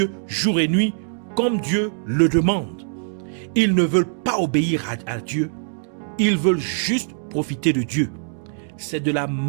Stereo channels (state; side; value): silent; left; digital silence